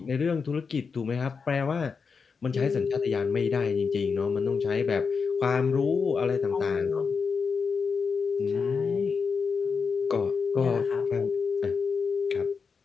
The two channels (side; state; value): right; quieter; 5.4 dB